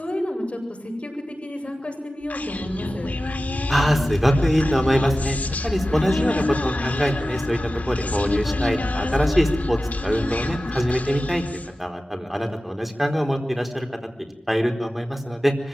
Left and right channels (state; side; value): normal; both; correlation 0.95